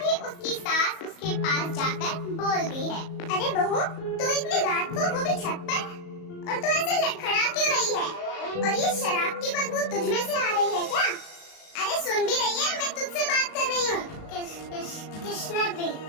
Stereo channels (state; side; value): late; right; 37 ms